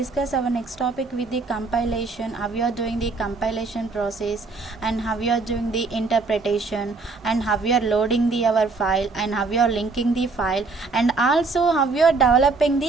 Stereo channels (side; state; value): left; quieter; 3.9 dB